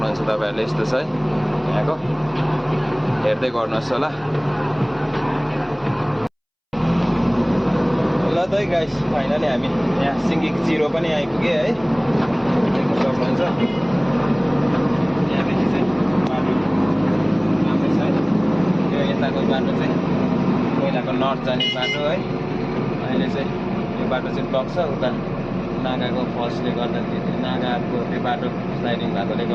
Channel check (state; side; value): identical; both; correlation 1.00